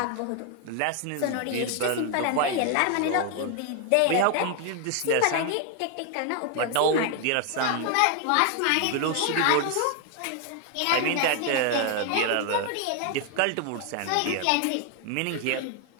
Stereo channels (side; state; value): both; different; correlation 0.00